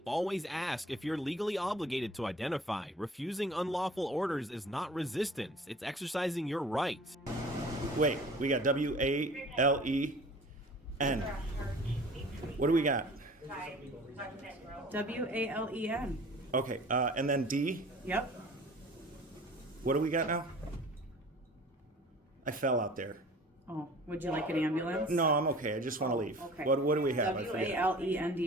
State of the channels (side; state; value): both; normal; correlation 0.45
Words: Always ask if you're legally obligated to identify. Refusing unlawful orders is not resistance, it's exercising your rights. Wait, we got W-A-L-E-N. What do we got? W-A-L-E-N. Okay, and then D. Yep. What do we got now? I fell out there. Oh, would you like an ambulance? No, I'm okay. I just want to leave. Okay. What do we have? I forget.